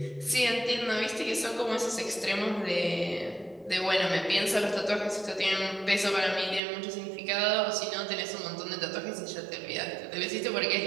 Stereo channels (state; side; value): drops out; left; at 6.6 s